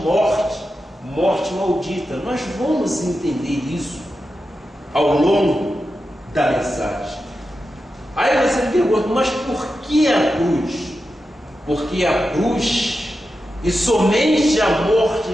morte maldita. Nós vamos entender isso ao longo da mensagem. Aí você me pergunta, mas por que a cruz? Porque a cruz, e somente a morte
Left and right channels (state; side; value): normal; both; correlation 0.90